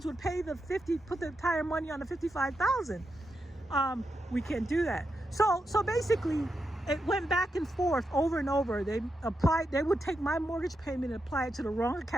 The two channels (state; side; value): normal; both; correlation 0.86